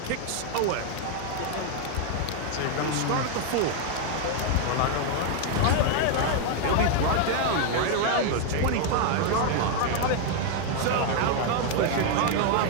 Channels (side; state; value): both; different; correlation 0.00